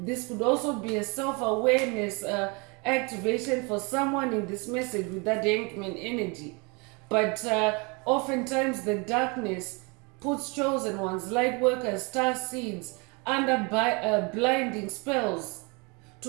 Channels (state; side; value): quieter; left; 30.1 dB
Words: could also be a self-awareness activation for someone in this message with that Hangman energy. But oftentimes the darkness puts chosen ones, light workers, star seeds under blinding spells to